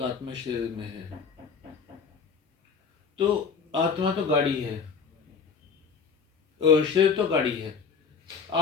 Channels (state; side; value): quieter; right; 5.7 dB